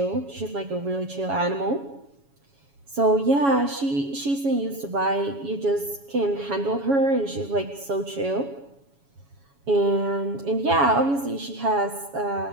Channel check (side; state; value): left; late; 7.2 ms